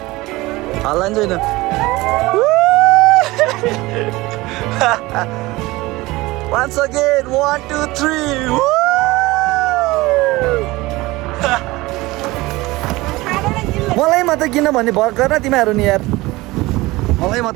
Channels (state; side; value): quieter; left; 20.5 dB